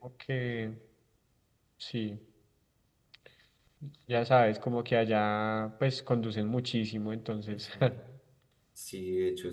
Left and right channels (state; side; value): identical; both; correlation 1.00